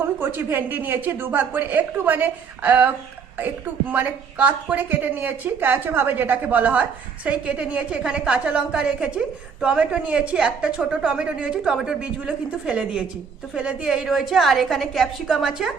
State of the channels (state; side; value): quieter; left; 6.1 dB